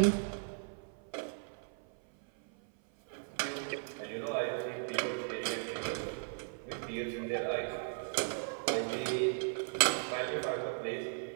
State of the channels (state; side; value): silent; left; 53 dB below the other